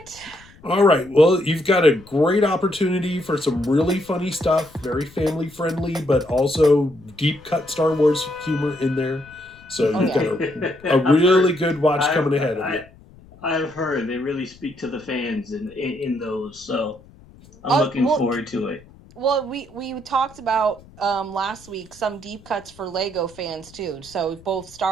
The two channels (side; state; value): left; noise; rumble, 24 dB below the sound